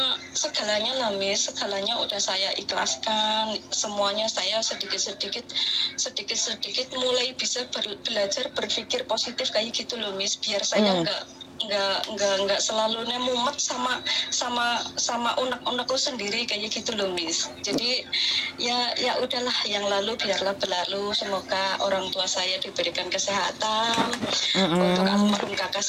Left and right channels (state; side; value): identical; both; correlation 1.00